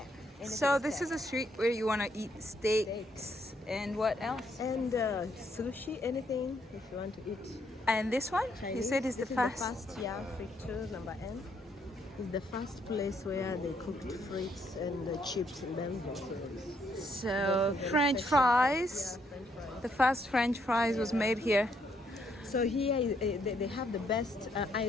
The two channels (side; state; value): both; normal; correlation 0.72